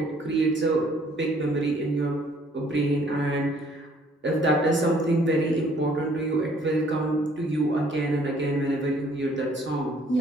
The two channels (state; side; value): normal; both; correlation 0.61